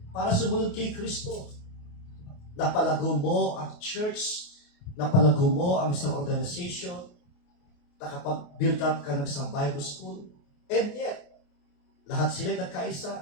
para sumunod kay Kristo. Napalago mo ang church, napalago mo ang isang organization, nakapag-build up ka ng isang Bible school, and yet, lahat sila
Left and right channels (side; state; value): right; late; 28 ms